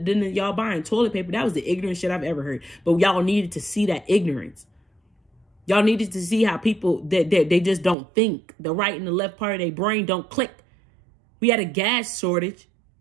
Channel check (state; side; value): drops out; left; at 8.0 s